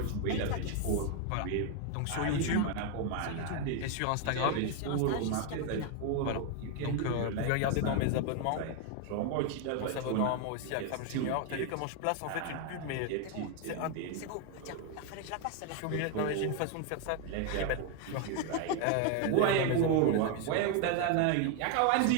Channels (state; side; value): different; both; correlation 0.01